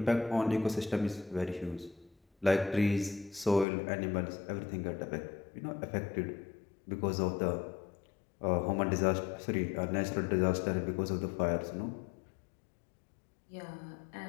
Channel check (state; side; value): drops out; right; at 3.7 s